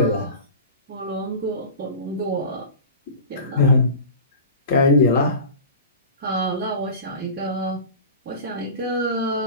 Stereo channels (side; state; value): both; inverted; correlation -0.33